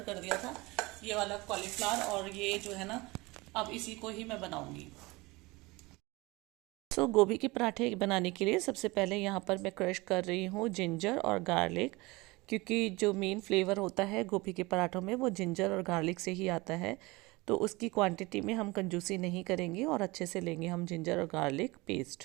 कर दिया था ये वाला कॉलीफ्लावर, और ये जो है ना अब इसी को ही मैं बनाऊंगी। तो गोभी के पराठे बनाने के लिए सबसे पहले यहाँ पर मैं क्रश कर रही हूँ जिंजर और गार्लिक, क्योंकि जो मेन फ्लेवर होता है गोभी के पराठों में वो जिंजर और गार्लिक से ही आता है। तो उसकी क्वांटिटी में हम कंजूसी नहीं करेंगे और अच्छे से लेंगे हम जिंजर और गार्लिक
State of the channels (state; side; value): quieter; left; 23.0 dB